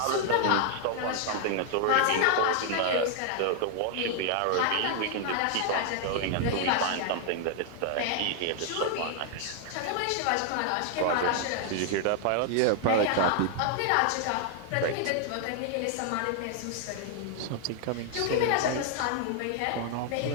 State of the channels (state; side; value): different; both; correlation 0.00